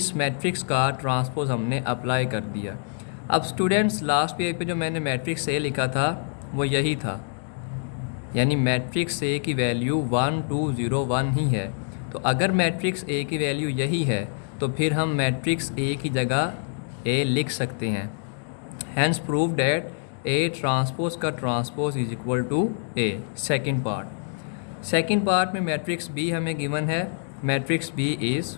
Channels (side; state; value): right; silent; 61 dB below the other